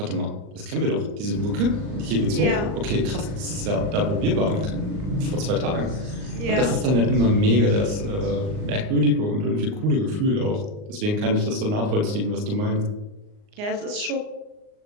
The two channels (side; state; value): left; late; 38 ms